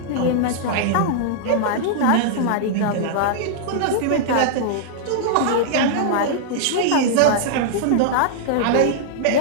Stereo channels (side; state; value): both; different; correlation -0.01